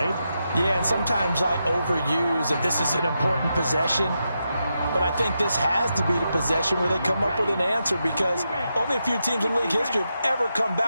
Yeah, and sometimes I overuse that this is an important possession. but I think this has to be the possession where they come up with an answer, because only a few teams in league history have ever come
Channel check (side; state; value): both; inverted; correlation -0.86